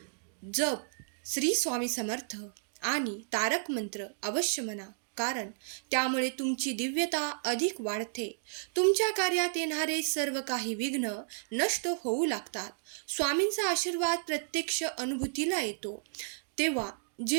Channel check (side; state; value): left; silent; digital silence